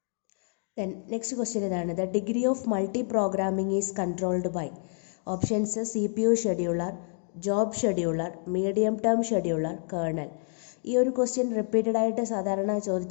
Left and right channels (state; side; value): silent; right; 58 dB below the other